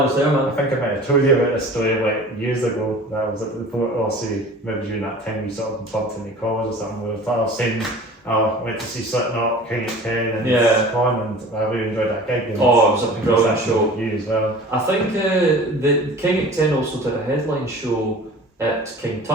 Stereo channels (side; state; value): both; normal; correlation 0.42